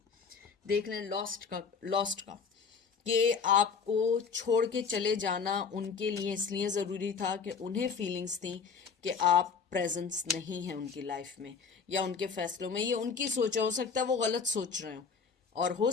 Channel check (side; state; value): right; quieter; 5.8 dB